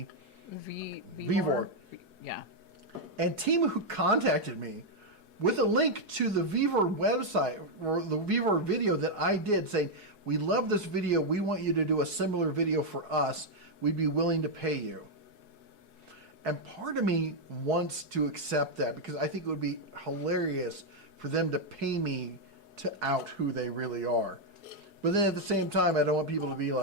Vivor. Yeah. And Temu contacted me with a link to the Vivor website or the Vivor video that I did saying, we love this video. We want you to do a similar video for us. We'd be willing to pay you. And part of me wants to accept that because I think it would be hilarious for them to pay me to out who they really are. But then at the same time, I don't want people to be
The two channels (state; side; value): late; left; 4.7 ms